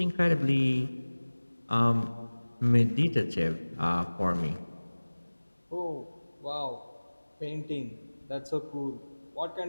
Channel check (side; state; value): both; inverted; correlation -1.00